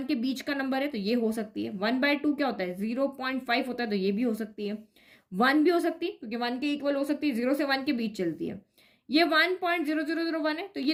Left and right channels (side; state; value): both; identical; correlation 1.00